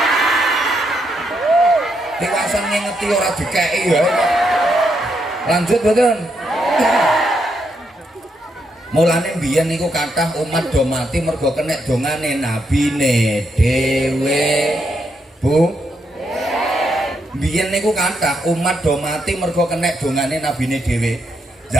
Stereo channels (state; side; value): normal; both; correlation 0.79